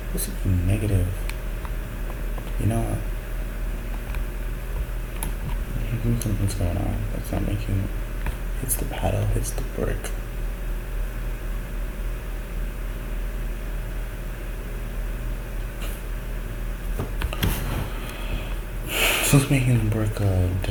This is negative. You know what? Something's going on. That's not making. Hits the paddle, hits the brick. So it's making the brick a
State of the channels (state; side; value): identical; both; correlation 1.00